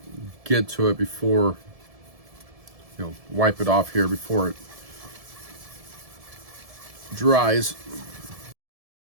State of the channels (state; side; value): late; left; 1.7 ms